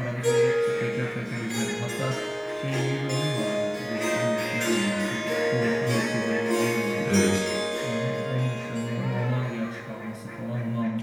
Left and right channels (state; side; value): identical; both; correlation 1.00